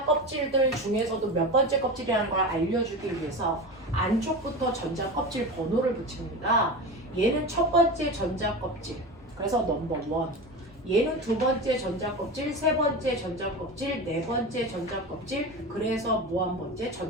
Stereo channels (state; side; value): normal; both; correlation 0.26